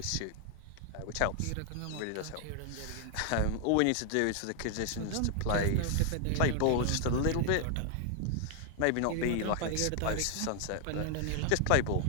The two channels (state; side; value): different; both; correlation 0.00